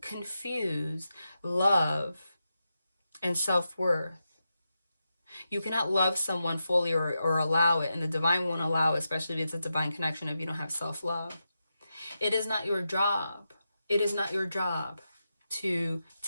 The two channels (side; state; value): both; inverted; correlation -0.88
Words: confuse love and self-worth. You cannot love someone fully or allow it, and the divine won't allow it, especially if it's a divine connection, if you don't have self-love. It is not your job. It is not your job to